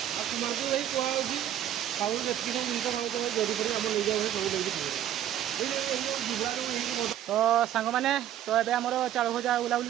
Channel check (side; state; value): left; quieter; 11.3 dB